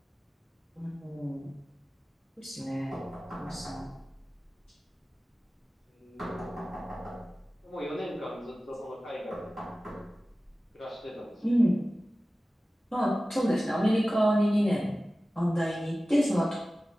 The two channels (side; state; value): both; normal; correlation 0.96